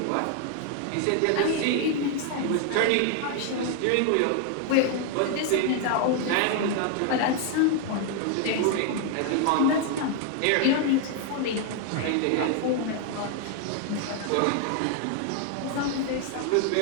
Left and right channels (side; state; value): both; different; correlation 0.00